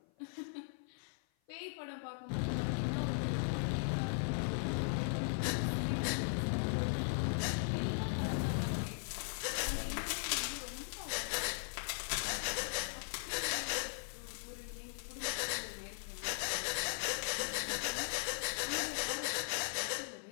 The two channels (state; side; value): silent; right; 52 dB below the other